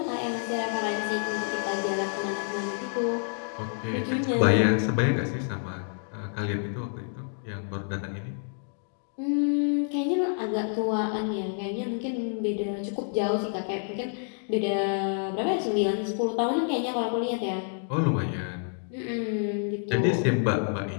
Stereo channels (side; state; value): right; silent; 59 dB below the other